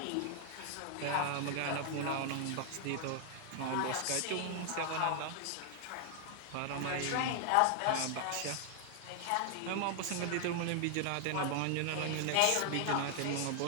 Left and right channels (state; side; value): different; both; correlation 0.00